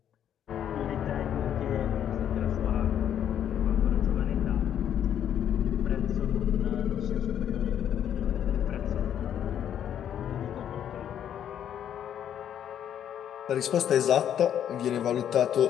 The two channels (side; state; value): right; quieter; 9.7 dB